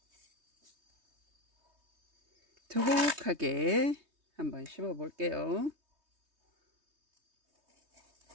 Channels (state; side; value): late; left; 3.2 ms